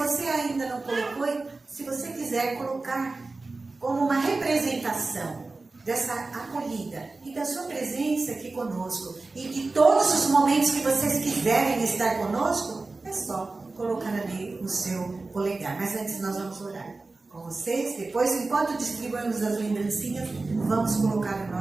ainda não colocou, se você quiser colocar como uma representação dessa acolhida e da sua presença aqui conosco, e de todos os momentos que vocês quiserem estar conosco, é só colocar ali o seu polegar. Mas antes nós vamos orar com vocês. Depois, enquanto distribuímos as lembrancinhas, vamos colocar o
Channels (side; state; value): left; quieter; 3.5 dB